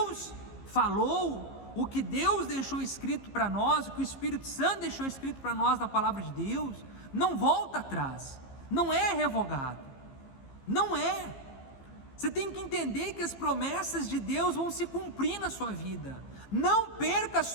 falou, o que Deus deixou escrito para nós, o que o Espírito Santo deixou escrito para nós na palavra de Deus, não volta atrás, não é revogado, não é. Você tem que entender que as promessas de Deus vão se cumprir na sua vida. Não perca a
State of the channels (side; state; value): right; late; 15 ms